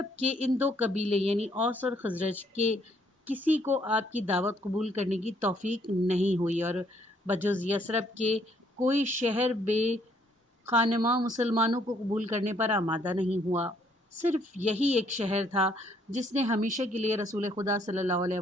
کے ان دو قبیلے یعنی اوس اور خزرج کے کسی کو آپ کی دعوت قبول کرنے کی توفیق نہیں ہوئی، اور بجز یثرب کے کوئی شہر بے خانماں مسلمانوں کو قبول کرنے پر آمادہ نہیں ہوا۔ صرف یہی ایک شہر تھا جس نے ہمیشہ کے لیے رسول خدا صلی اللہ علیہ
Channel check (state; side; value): normal; both; correlation 0.67